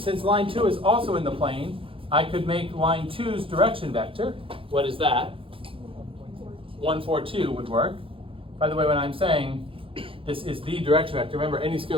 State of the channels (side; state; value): left; late; 0.26 ms